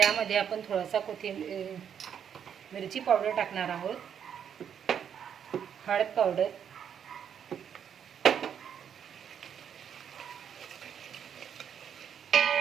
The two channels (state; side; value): quieter; left; 8.3 dB